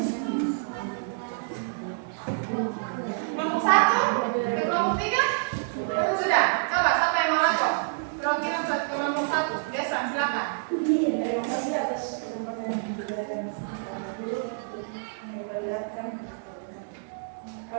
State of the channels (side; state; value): left; silent; digital silence